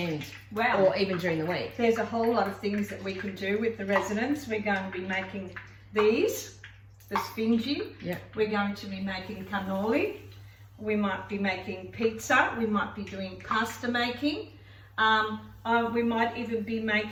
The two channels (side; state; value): both; identical; correlation 1.00